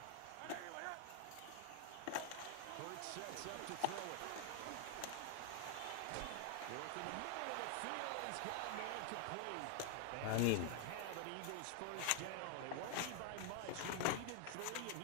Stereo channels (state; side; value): different; both; correlation 0.00